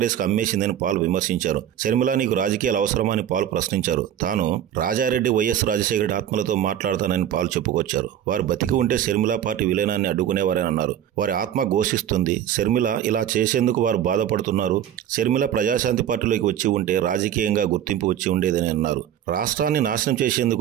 కు అమ్మేసిందని పాల్ విమర్శించారు. షర్మిల నీకు రాజకీయాలు అవసరమా అని పాల్ ప్రశ్నించారు. తాను రాజారెడ్డి వైఎస్ రాజశేఖర రెడ్డి ఆత్మలతో మాట్లాడతానని పాల్ చెప్పుకొచ్చారు. వారు బతికి ఉంటే షర్మిల పార్టీ విలీనాన్ని అడ్డుకునేవారని అన్నారు. వారి ఆత్మ ఘోషిస్తుంది. షర్మిల ఇలా చేసేందుకు వారు బాధపడుతున్నారు. షర్మిల ప్రజాశాంతి పార్టీలోకి వచ్చి ఉంటే రాజకీయంగా గుర్తింపు వచ్చి ఉండేదని అన్నారు. రాష్ట్రాన్ని నాశనం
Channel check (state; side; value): quieter; left; 10.5 dB